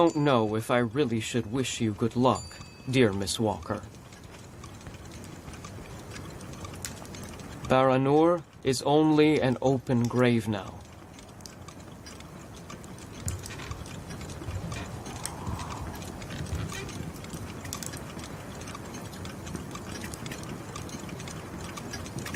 know if I really should wish you good luck, dear Miss Walker. Baranor is only an open grave now.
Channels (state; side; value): identical; both; correlation 1.00